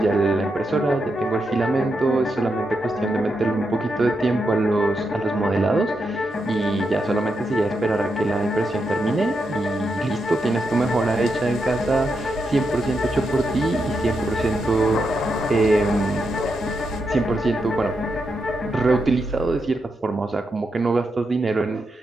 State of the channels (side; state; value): both; normal; correlation 0.84